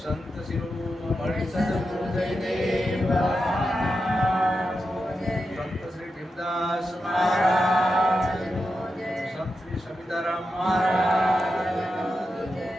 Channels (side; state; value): both; normal; correlation 0.89